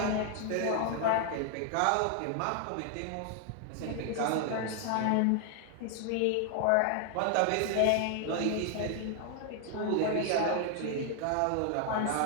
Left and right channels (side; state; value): both; different; correlation 0.00